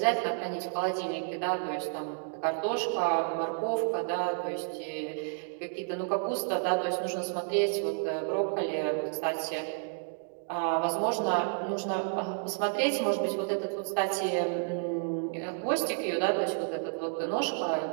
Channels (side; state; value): left; silent; digital silence